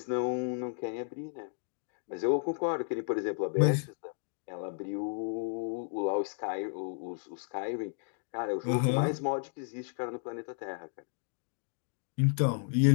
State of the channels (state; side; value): silent; right; 56 dB below the other